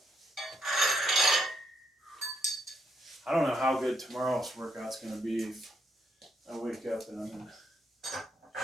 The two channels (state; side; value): normal; both; correlation 0.76